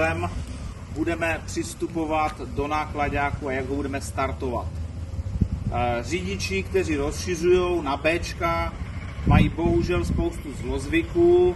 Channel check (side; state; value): both; identical; correlation 1.00